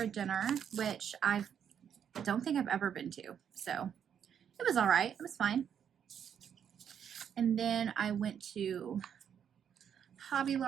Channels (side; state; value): left; quieter; 8.4 dB